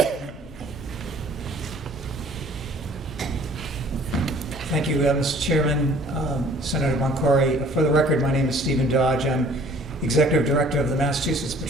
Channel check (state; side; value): normal; both; correlation 0.54